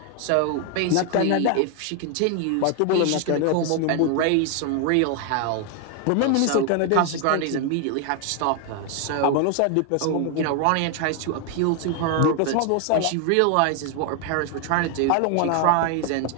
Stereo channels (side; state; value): both; different; correlation 0.00